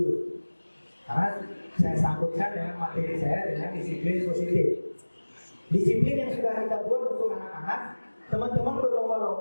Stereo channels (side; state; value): both; inverted; correlation -1.00